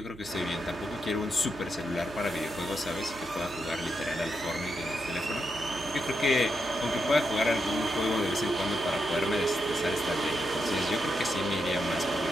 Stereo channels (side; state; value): right; noise; hum, 19 dB below the sound